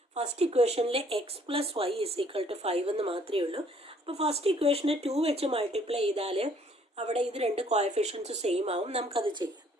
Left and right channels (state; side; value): normal; both; correlation 0.62